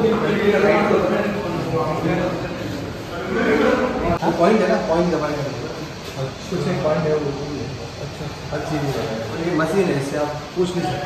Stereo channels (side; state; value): both; identical; correlation 1.00